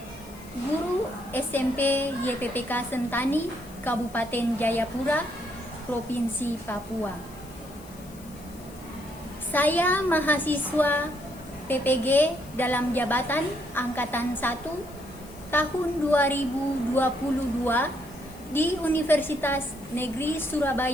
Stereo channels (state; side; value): noise; left; hiss, 22 dB below the sound